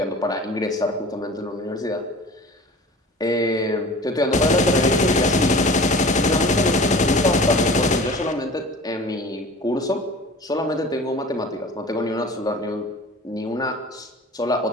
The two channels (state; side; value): normal; both; correlation 0.41